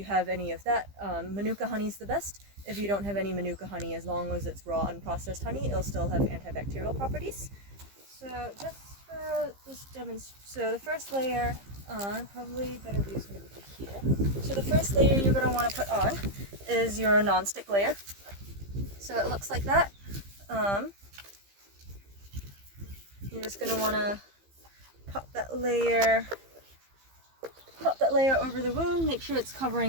have any of that, Manuka honey is the best. If you don't have any Manuka honey, as long as it's raw unprocessed honey, it'll still have antibacterial properties. So just for this demonstration, so the first layer, probably better view is going to be here. So the first layer you're going to want to put on is your non-stick layer. So it looks like that. You're just going to want to pop that layer over the wound, make sure it's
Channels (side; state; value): left; late; 15 ms